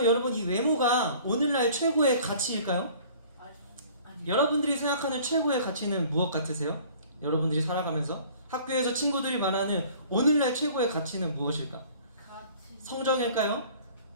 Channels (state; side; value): inverted; both; correlation -0.50